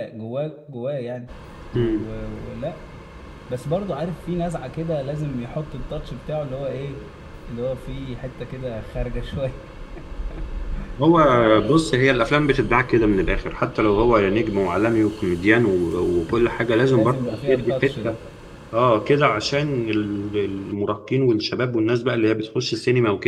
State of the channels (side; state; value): both; identical; correlation 1.00